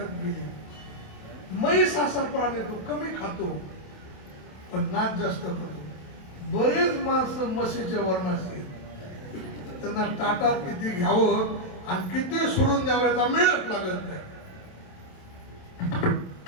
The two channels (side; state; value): right; late; 27 ms